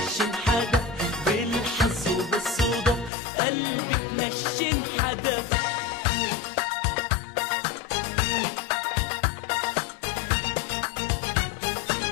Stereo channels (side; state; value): right; drops out; at 3.1 s